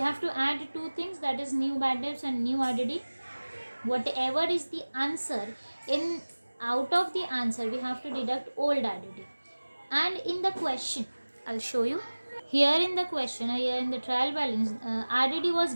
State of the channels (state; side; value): inverted; both; correlation -1.00